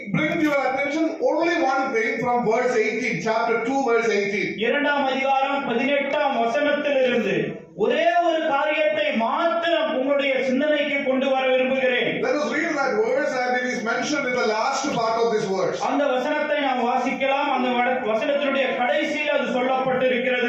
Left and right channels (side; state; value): both; identical; correlation 1.00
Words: bring to your attention only one thing from verse 18, chapter 2 verse 18. 2ஆம் அதிகாரம் 18ஆம் வசனத்திலிருந்து ஒரே ஒரு காரியத்தை மாத்திரம் உங்களுடைய சிந்தனைக்கு கொண்டு வர விரும்புகிறேன். Let us read that verse and it is mentioned in the last part of this verse. அந்த வசனத்தை நாம் வாசிக்கலாம். அந்த வசனத்தினுடைய கடைசியில் அது